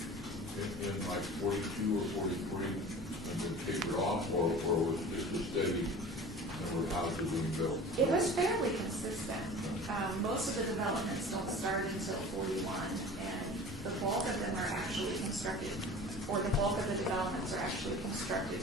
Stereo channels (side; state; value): both; normal; correlation 0.40